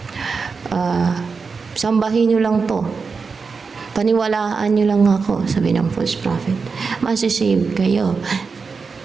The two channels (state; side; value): quieter; left; 4.9 dB